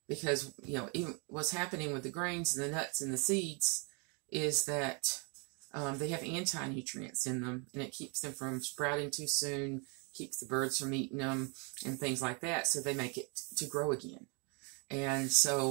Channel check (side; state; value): left; quieter; 33.9 dB